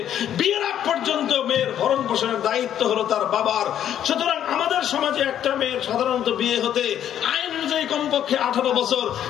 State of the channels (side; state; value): right; quieter; 10.3 dB